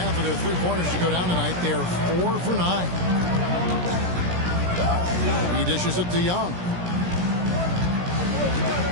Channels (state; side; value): late; left; 17 ms